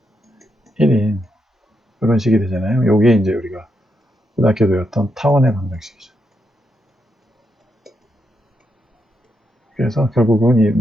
1인 이런 식이 되잖아요. 요게 이제 우리가 고등학교 배웠던 타원의 방정식이죠. 그래서 결국은 이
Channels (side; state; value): both; normal; correlation 0.82